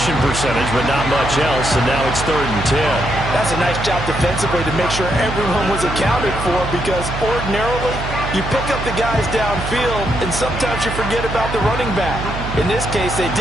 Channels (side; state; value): right; noise; hum, 6 dB below the sound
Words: percentage, but not much else, and now it's 3rd and 10. That's a nice job defensively to make sure everyone was accounted for because ordinarily you pick up the guys downfield, and sometimes you forget about the running back. In this case, they